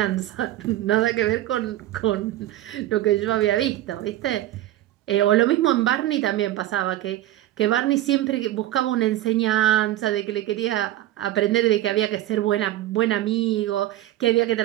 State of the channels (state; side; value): quieter; left; 14.4 dB